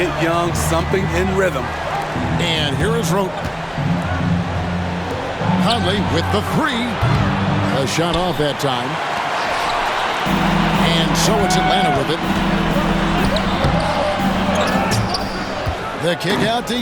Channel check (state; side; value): identical; both; correlation 1.00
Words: Young something in rhythm. And here is Roten. Conley with the 3. A shot off that time. And so it's Atlanta with it. The kick out to